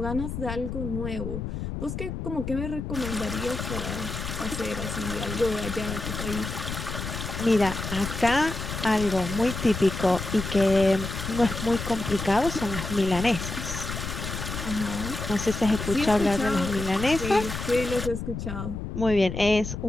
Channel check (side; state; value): left; noise; rumble, 6 dB below the sound